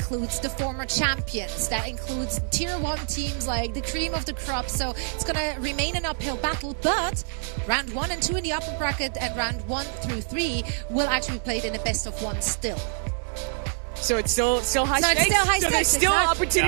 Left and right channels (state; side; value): silent; left; digital silence